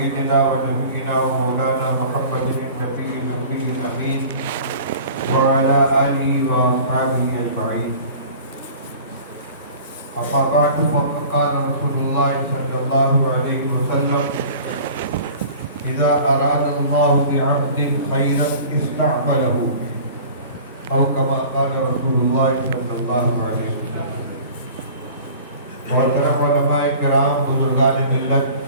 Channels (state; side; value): inverted; both; correlation -0.43